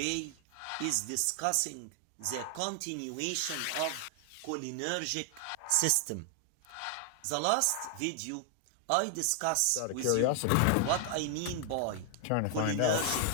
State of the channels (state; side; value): different; both; correlation 0.00